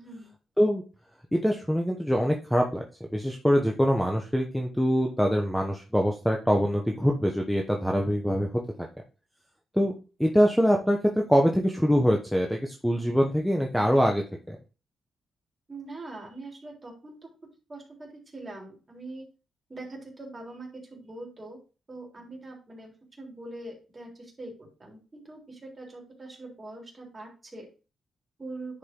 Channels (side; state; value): both; normal; correlation 0.97